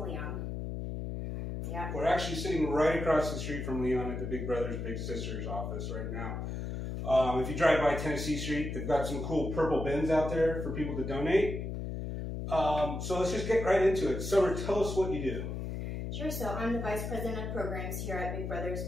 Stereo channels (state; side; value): noise; left; hum, 4 dB below the sound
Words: Leon. Yeah. We're actually sitting right across the street from Leon at the Big Brothers Big Sisters office right now. If you drive by Tennessee Street, they've got some cool purple bins out there for people to donate. So let's just get right into it. Summer, tell us what you do. Sure. So I'm the Vice President of Programs here at Big Brothers